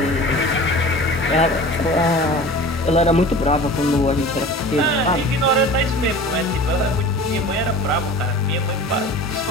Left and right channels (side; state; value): both; normal; correlation 0.39